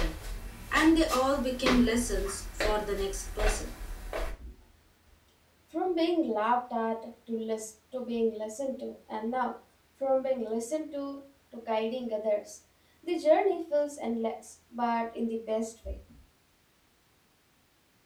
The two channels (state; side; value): identical; both; correlation 1.00